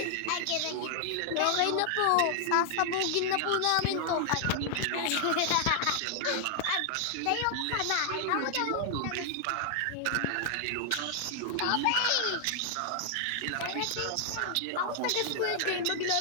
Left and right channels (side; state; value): both; different; correlation 0.00